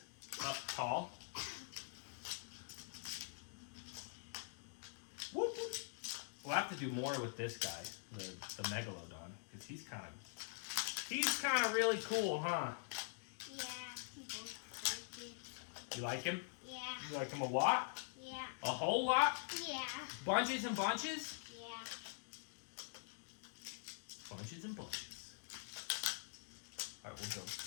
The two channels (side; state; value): right; silent; digital silence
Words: up tall? Whoop, whoop. We'll have to do more with this guy, the Megalodon, because he's kind of He's kind of really cool, huh? Yeah, people like it. You like him? Yeah. You like him a lot? Yeah. A whole lot? Yeah. Bunches and bunches? Yeah. Bunches and bunches. All right, we'll build